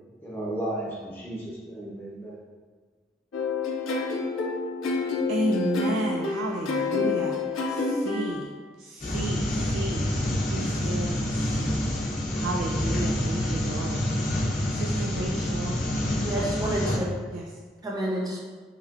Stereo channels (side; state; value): both; normal; correlation 0.68